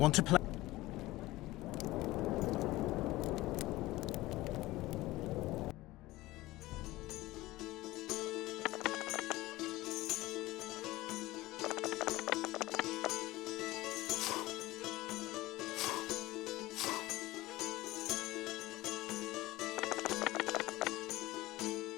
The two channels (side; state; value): right; quieter; 18.4 dB